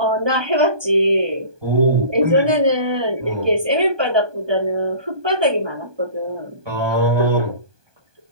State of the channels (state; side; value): late; left; 1.2 ms